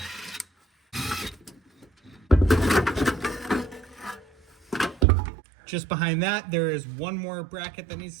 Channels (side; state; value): left; drops out; at 5.1 s